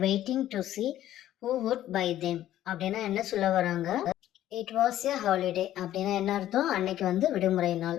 waiting to see who would buy them. அப்படின்னா என்ன சொல்ல வராங்க? It was a holiday. அப்படின்னா என்ன அர்த்தம்? அன்னைக்கு விடுமுறை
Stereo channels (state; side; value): quieter; right; 12.8 dB